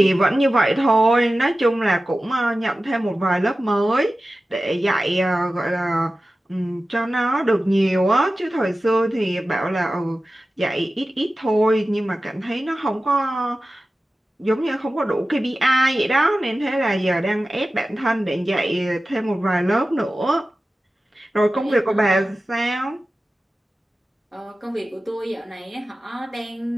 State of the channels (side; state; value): both; normal; correlation 0.95